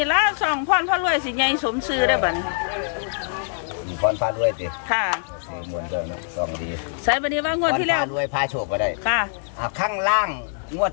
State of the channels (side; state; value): right; silent; digital silence